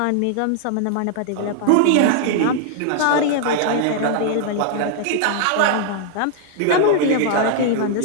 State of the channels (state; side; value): different; both; correlation -0.01